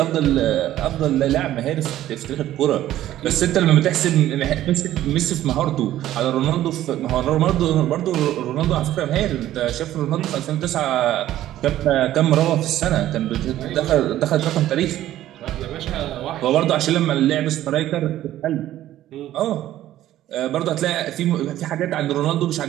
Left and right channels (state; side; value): quieter; left; 13.4 dB